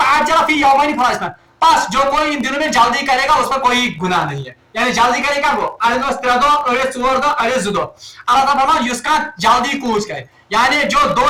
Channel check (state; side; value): identical; both; correlation 1.00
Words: فی یومین فلا اسم بس جو کوئی ان دنوں میں جلدی کرے گا اس پر کوئی گناہ نہیں ہے. یعنی جلدی کرے کیا گو اڑین 3 دۄہ اڑین 4 دۄہ اڑین 2 دۄہ. اللہ تعالیٰ فرمان یُس کانٛہہ جلدی کوچ کرے یعنی جو 2